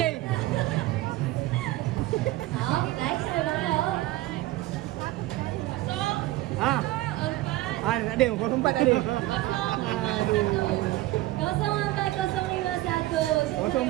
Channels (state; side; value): quieter; left; 17.1 dB